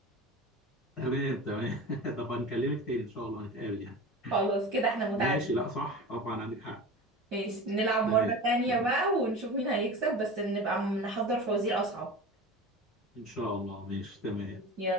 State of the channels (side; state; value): both; normal; correlation 0.32